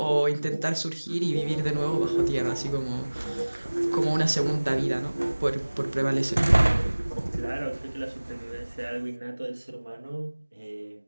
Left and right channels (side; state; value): both; inverted; correlation -1.00